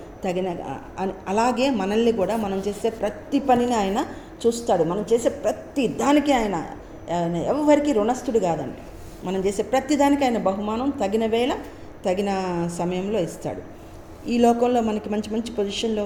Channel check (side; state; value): both; identical; correlation 1.00